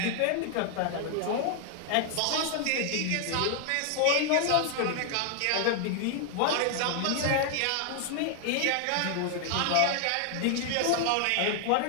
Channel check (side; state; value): both; different; correlation 0.00